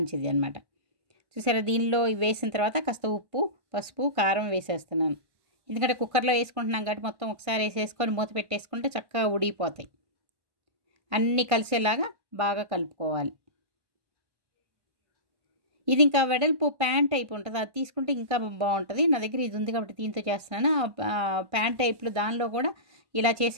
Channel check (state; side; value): late; left; 1.6 ms